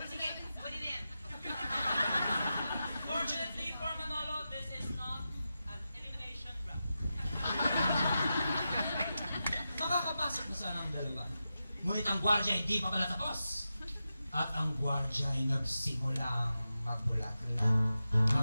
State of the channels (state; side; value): inverted; both; correlation -0.91